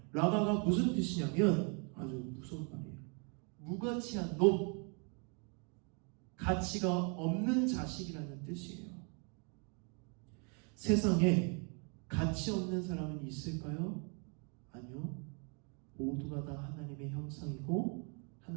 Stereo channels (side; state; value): left; quieter; 36.6 dB